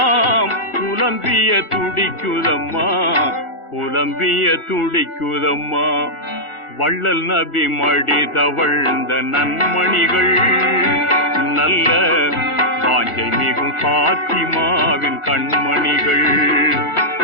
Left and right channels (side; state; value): right; late; 1.4 ms